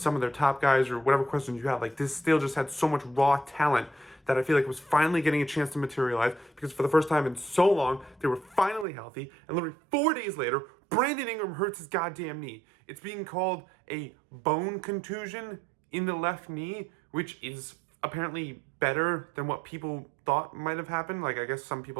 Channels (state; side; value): drops out; left; at 8.8 s